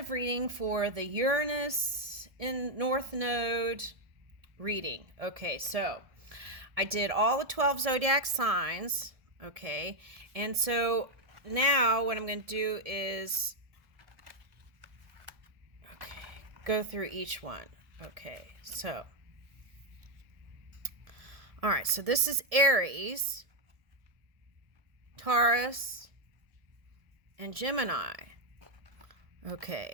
reading for the Uranus in North Node reading. Okay, so I did all the 12 zodiac signs. Okay, and so now what I'm going to do is go through each one. Okay, so all right, so this is Aries, Taurus, and Gemini.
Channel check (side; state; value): left; late; 1.7 ms